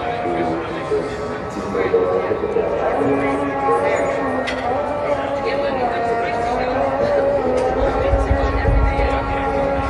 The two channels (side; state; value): both; identical; correlation 1.00